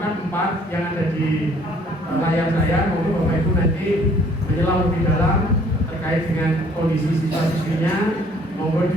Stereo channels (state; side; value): normal; both; correlation 0.59